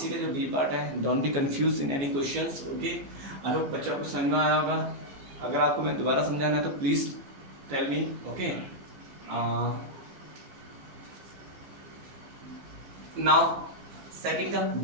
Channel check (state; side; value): late; left; 15 ms